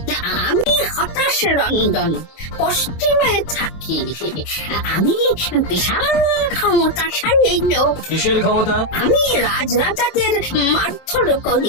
আমি হতাশ রঞ্জন, পশ্চিমে থাকি। আমি বিশাল ক্ষমতাশালী লোক। কিসের ক্ষমতা? আমি রাজরাজাদের মারধর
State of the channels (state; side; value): late; right; 24 ms